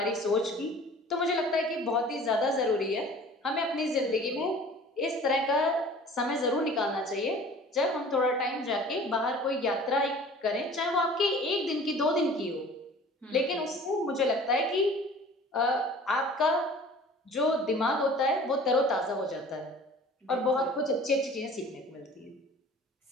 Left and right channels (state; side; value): normal; both; correlation 0.46